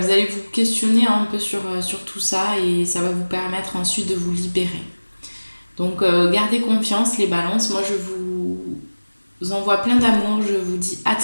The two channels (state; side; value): inverted; both; correlation -1.00